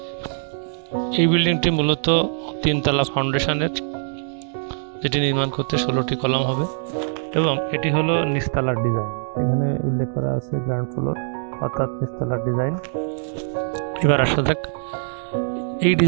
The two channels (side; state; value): left; silent; digital silence